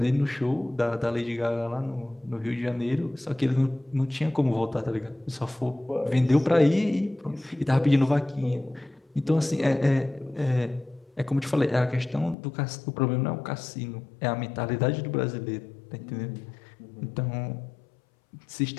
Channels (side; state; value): right; drops out; at 12.4 s